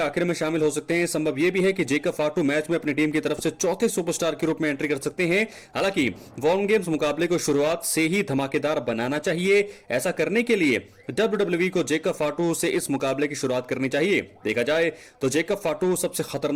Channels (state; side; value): identical; both; correlation 1.00